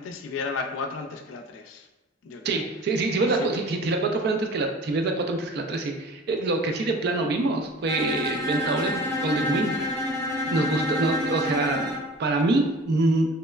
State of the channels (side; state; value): both; normal; correlation 0.42